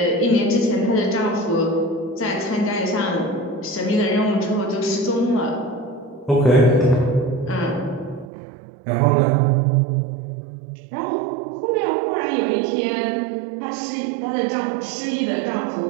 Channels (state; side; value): drops out; left; at 8.3 s